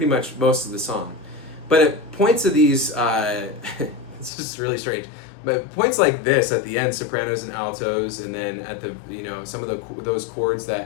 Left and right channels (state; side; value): drops out; right; at 4.3 s